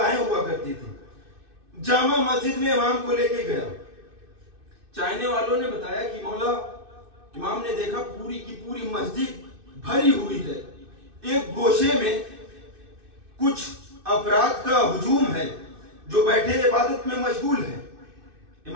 हुआ करती थी। जामा मस्जिद में इमाम को लेके गया। चाहने वालों ने बताया कि मौला इमाम ने देखा पूरी की पूरी मस्जिद भरी हुई है, एक गोशे में कुछ अफराद का हुजूम है जो बैठे इबादत में मशगूल है।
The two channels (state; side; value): late; left; 2.6 ms